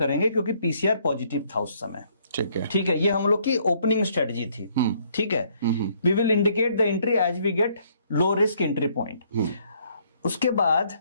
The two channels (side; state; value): both; inverted; correlation -0.66